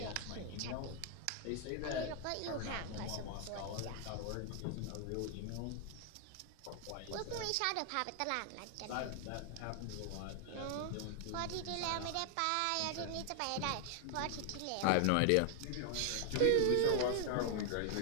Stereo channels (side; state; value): both; different; correlation 0.00